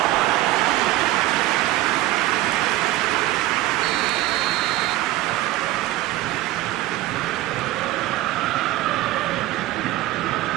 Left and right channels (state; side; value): quieter; left; 16.4 dB